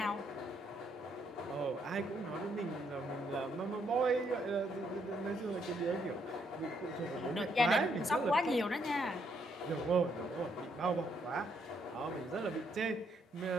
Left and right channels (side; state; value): both; normal; correlation 0.73